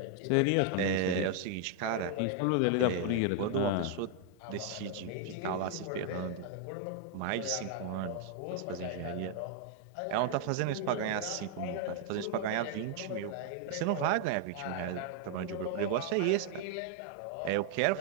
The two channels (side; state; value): both; different; correlation 0.00